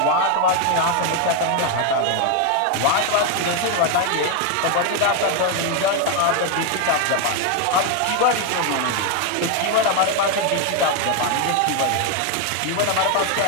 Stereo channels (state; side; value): different; both; correlation 0.01